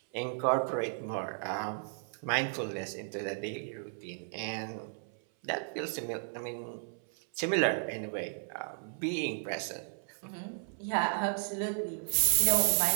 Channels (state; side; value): silent; left; 55 dB below the other